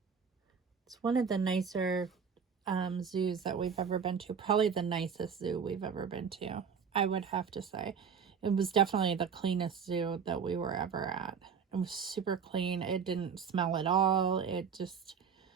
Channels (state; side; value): quieter; left; 6.6 dB